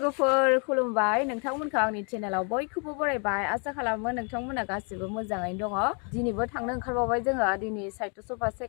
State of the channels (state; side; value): quieter; right; 38.2 dB